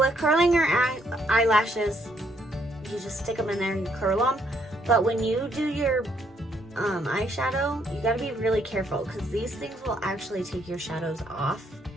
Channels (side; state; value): both; normal; correlation 0.71